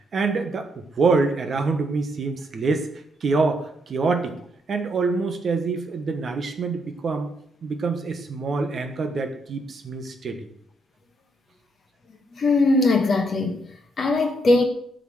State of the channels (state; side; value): normal; both; correlation 0.75